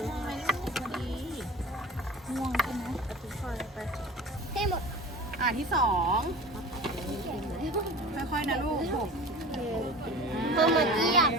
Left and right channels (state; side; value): normal; both; correlation 0.37